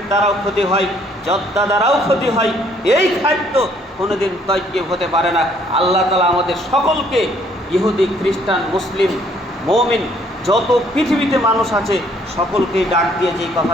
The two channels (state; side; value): normal; both; correlation 0.64